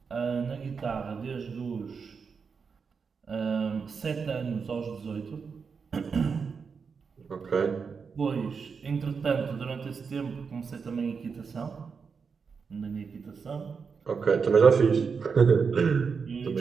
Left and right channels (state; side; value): quieter; left; 5.6 dB